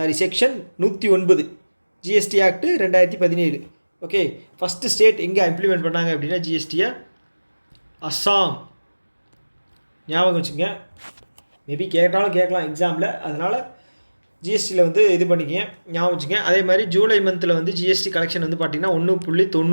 109 GST act 2017. Okay, first state எங்கே இம்ப்ளிமெண்ட் பண்ணாங்க அப்படின்னா ஜிஎஸ்டியை அஸ்ஸாம். ஞாபகம் வச்சுங்க, மேபி கேட்டாலும் கேட்கலாம் எக்ஸாமில், அதனால் ஜிஎஸ்டியில் வந்து இது பண்ணிக்கங்க, ஞாபகம் வச்சுங்க. அதே மாதிரி ஜூலை மந்தில் வந்து ஜிஎஸ்டி கலெக்ஷன் வந்து பார்த்திங்கன்னா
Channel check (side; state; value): both; inverted; correlation -1.00